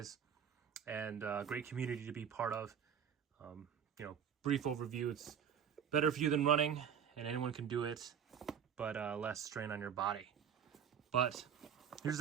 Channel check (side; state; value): left; quieter; 8.1 dB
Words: and a great community to be part of. Brief overview, it's better for you than running, and anyone can do it, but less strain on your body. But here's